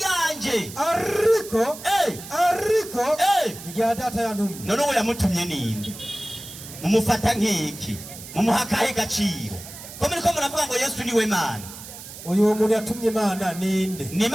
ariko irya data yantumye none uwo yamutumye ninde mumufata nk'iki mumuhakahe gaciro ko muri ko muravuga ngo Yesu niwe Mana uyu muntu yatumye Imana ninde ni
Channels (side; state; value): right; noise; hiss, 14 dB below the sound